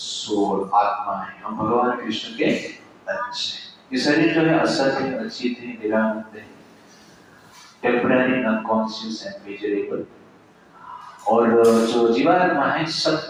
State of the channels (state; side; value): identical; both; correlation 1.00